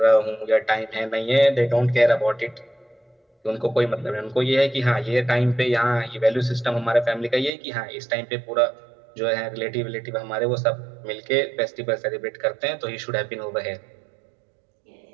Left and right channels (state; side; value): drops out; left; at 7.5 s